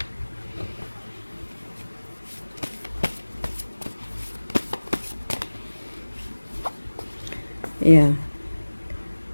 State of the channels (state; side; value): inverted; both; correlation -1.00